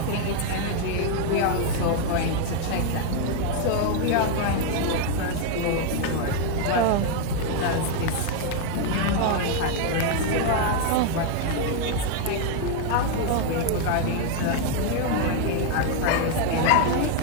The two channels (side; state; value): both; different; correlation 0.01